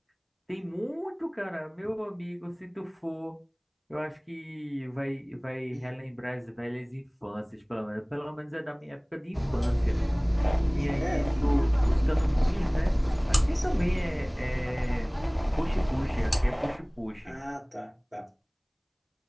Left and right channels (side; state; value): both; identical; correlation 1.00